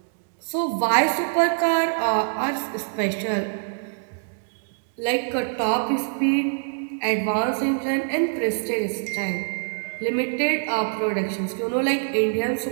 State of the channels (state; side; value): silent; left; digital silence